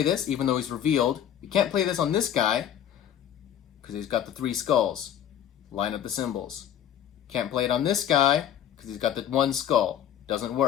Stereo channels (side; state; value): right; quieter; 10.0 dB